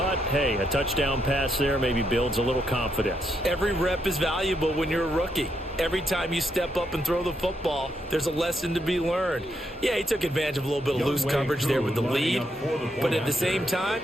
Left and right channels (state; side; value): normal; both; correlation 0.79